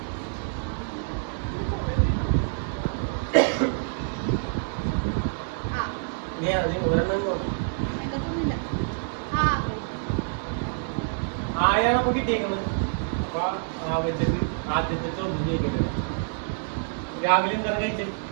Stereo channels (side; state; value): left; silent; 58 dB below the other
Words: ആയാണ് അപ്പൊ കിട്ടിയേക്കുന്നത്. അപ്പൊ ആ വെച്ചിട്ട് ആദ്യത്തെ ചോദ്യം ചോദിക്കട്ടെ. രാവിലെ എന്താണ് കഴിച്ചത്?